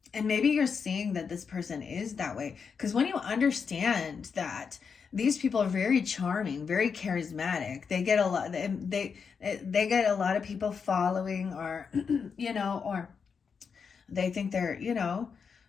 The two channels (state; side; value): quieter; right; 6.0 dB